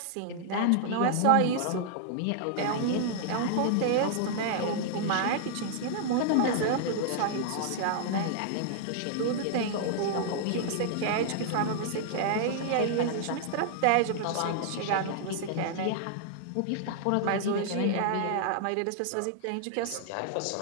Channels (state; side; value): different; both; correlation -0.01